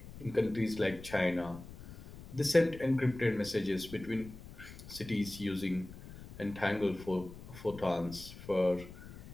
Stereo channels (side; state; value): left; noise; rumble, 15 dB below the sound